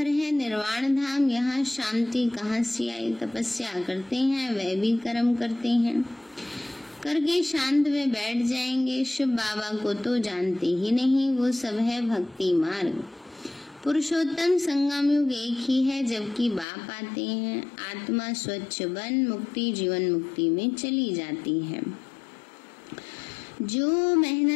है निर्वाण धाम, यहाँ शांति कहाँ से आई। तपस्या करते हैं, वह भी कर्म करते हैं, करके शांत में बैठ जाएंगे। शिव बाबा को तो जानते ही नहीं, वो सब है भक्ति मार्ग। पुरुषोत्तम संगम युग एक ही है जबकि बाप आते हैं। आत्मा स्वच्छ बन मुक्ति जीवन मुक्ति में चली जाती है। जो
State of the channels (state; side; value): drops out; right; at 16.7 s